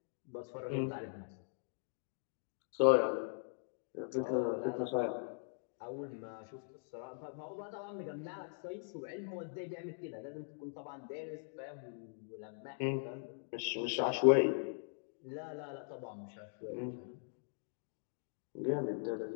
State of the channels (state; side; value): silent; right; digital silence